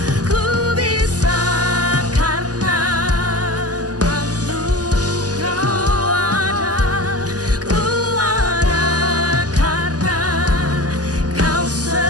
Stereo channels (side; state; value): left; late; 0.67 ms